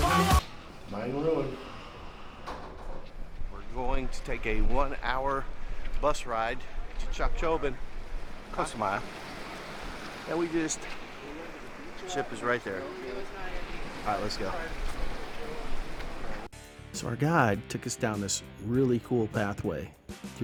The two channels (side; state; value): both; identical; correlation 1.00